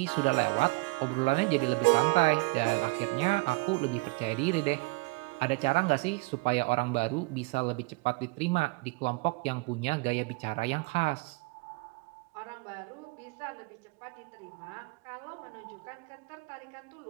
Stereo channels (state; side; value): quieter; left; 26.2 dB